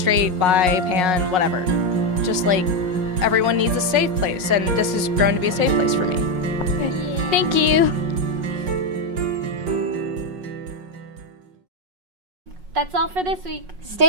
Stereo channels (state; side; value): late; left; 5.5 ms